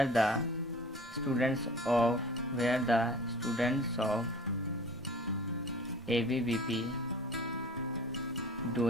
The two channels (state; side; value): normal; both; correlation 0.43